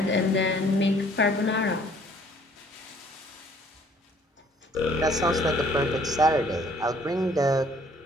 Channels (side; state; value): both; normal; correlation 0.59